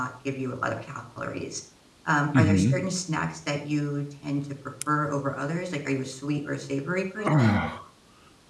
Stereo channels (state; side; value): identical; both; correlation 1.00